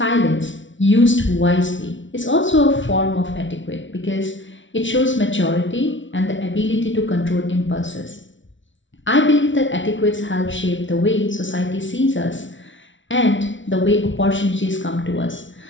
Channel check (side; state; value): right; late; 0.56 ms